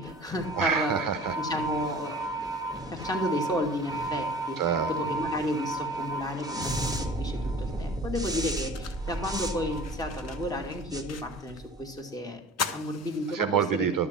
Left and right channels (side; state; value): both; normal; correlation 0.42